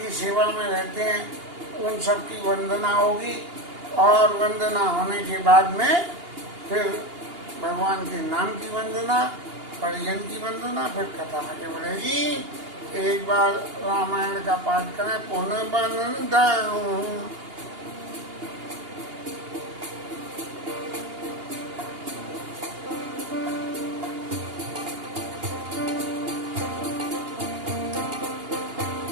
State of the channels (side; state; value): left; late; 2.8 ms